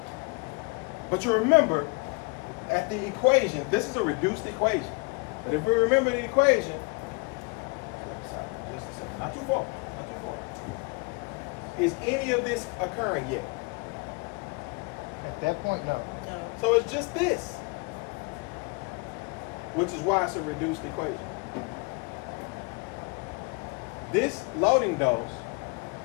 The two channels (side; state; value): right; quieter; 30.6 dB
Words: But you remember, at the equation, this is a reduced equation. But if we remember the equation, just a second, not too far. Is any of this occurring yet? At that point, no. So it's just this, which is why it's a reduced equation. This loading dose